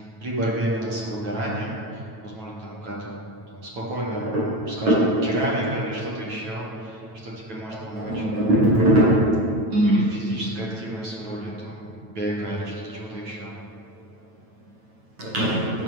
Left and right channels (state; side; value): late; left; 9.2 ms